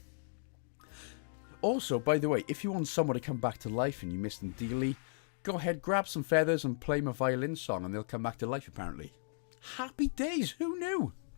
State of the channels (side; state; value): right; silent; digital silence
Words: Also, by the way, if you want someone to come back to life and you missed them dearly, go ahead, grab some feathers and play my violin song and they'll come back to life apparently. Happy days! Who knew?